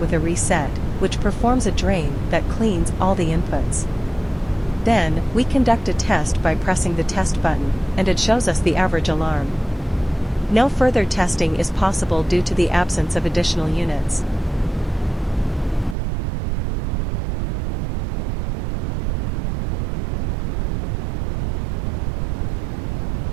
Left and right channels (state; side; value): drops out; left; at 16.0 s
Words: a reset, which performs a drain that cleans all the inputs. Then, we conduct a test by pressing the test button, and it shows us the average alarm. No further testing is possible due to the absence of additional units.